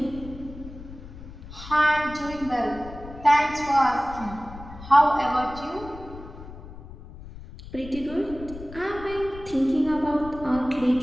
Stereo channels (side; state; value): left; noise; rumble, 14 dB below the sound